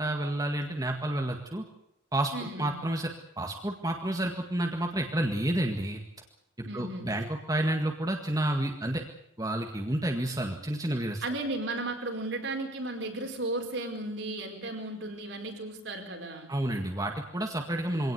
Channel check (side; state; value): both; normal; correlation 0.66